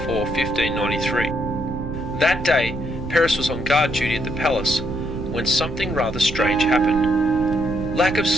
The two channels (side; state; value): right; noise; rumble, 8 dB below the sound